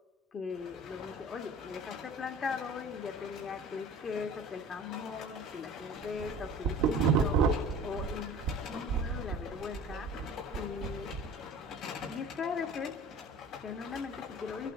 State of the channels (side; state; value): both; normal; correlation 0.42